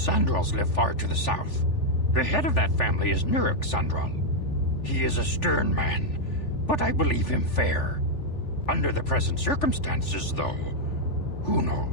live far to the south. The head of that family is Nurik Sandral. He is a stern man, but I believe him fair. Under the present circumstances, though, who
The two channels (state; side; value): late; right; 3.4 ms